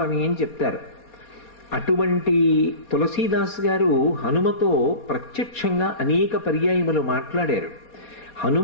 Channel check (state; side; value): late; right; 4.2 ms